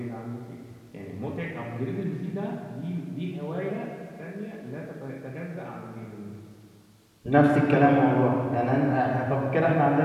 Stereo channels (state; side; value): identical; both; correlation 1.00